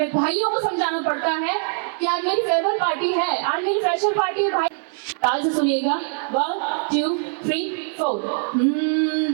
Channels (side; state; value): left; silent; 62 dB below the other